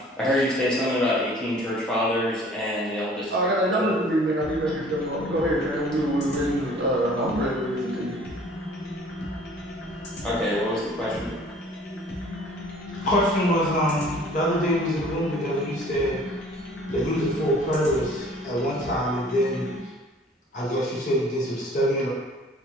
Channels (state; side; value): normal; both; correlation 0.52